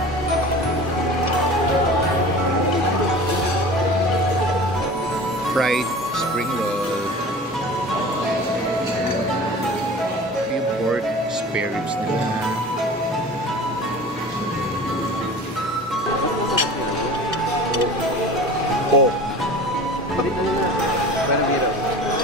Fried spring roll. Yung pork spare ribs nila.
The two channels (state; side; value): normal; both; correlation 0.38